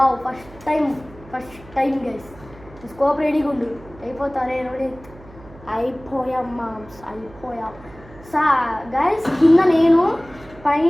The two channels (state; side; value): noise; right; hum, 21 dB below the sound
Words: first time guys. Scope రెడీగా ఉండు, అయిపోతారే రోడి. అయిపోయాం మామ్స్, అయిపోయాం. గైస్ కింద నేను,